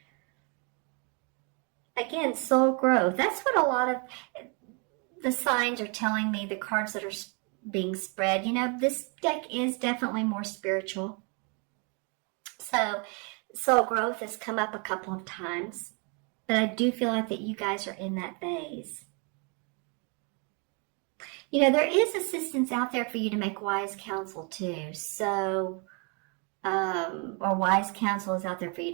Again, soul growth. That's what a lot of the signs are telling me, the cards that are being spread. This deck is definitely more spiritual. So soul growth has come up a couple of times, but I do feel like that you guys are in that phase. There is assistance out there for you to make wise counsel too. So, or wise counsel is out there for you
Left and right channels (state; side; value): quieter; left; 34.6 dB